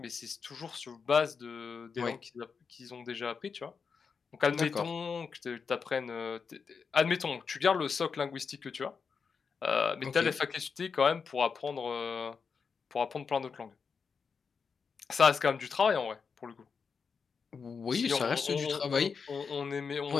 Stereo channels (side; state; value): right; quieter; 5.6 dB